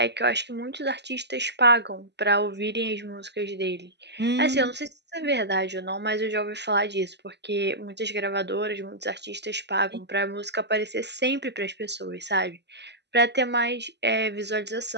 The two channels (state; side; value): late; left; 0.50 ms